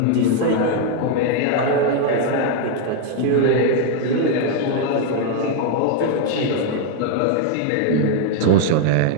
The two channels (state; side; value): different; both; correlation 0.01